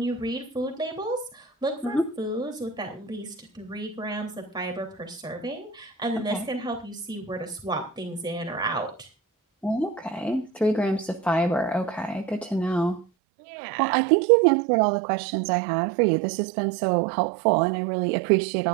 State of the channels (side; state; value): left; drops out; at 13.1 s